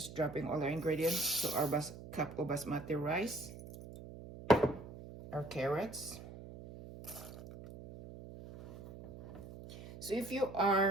dropping all our ingredients. So our cup of basmati rice, our carrots. So if you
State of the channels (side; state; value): right; noise; hum, 14 dB below the sound